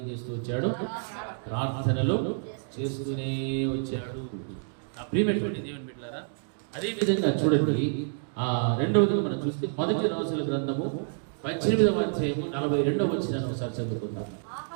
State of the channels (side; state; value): left; silent; digital silence